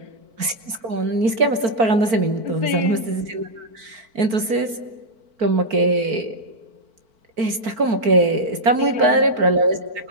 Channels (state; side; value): late; left; 4.5 ms